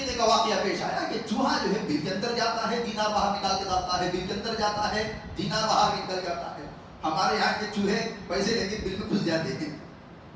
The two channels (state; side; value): identical; both; correlation 1.00